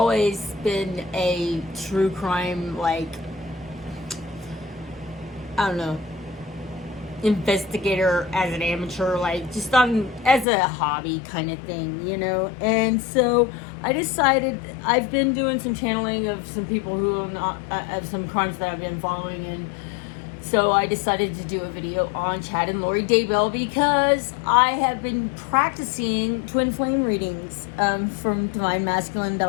been a true crime, I don't know, investigator as an amateur, just as a hobby kind of thing, And so I decided, I've been doing some channeling of some people who are not, of some crimes that I've been following, and so I decided to do a video on Chad and Lori Daybell because I have been practicing twin flame readings from Divine Masculine,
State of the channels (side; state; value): right; drops out; at 10.5 s